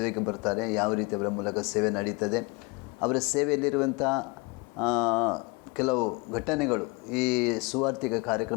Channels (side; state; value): right; quieter; 27.5 dB